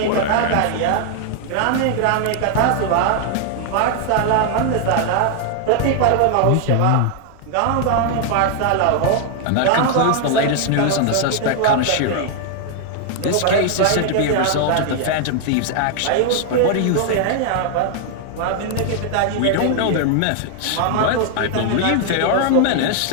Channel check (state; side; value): different; both; correlation 0.00